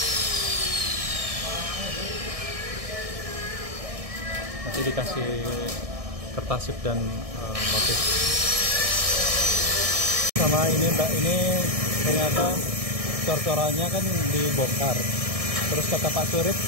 Nanti dikasih kertasip dan motif. Sama ini Mbak, ini ternyata cor-corannya kan dibongkar. Terus kata Pak Surip,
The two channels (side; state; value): left; late; 1.6 ms